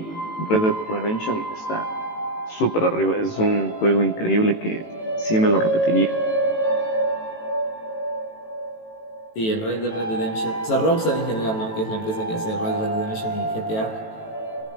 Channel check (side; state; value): right; late; 18 ms